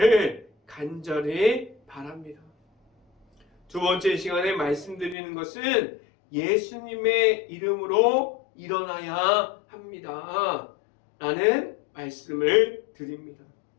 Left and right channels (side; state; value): right; drops out; at 5.2 s